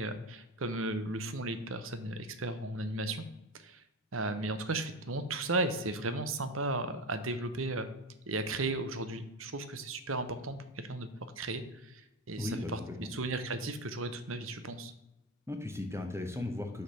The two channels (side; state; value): both; normal; correlation 0.21